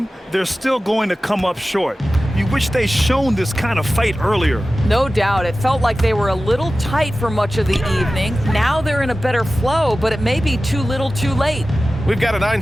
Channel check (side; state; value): both; normal; correlation 0.95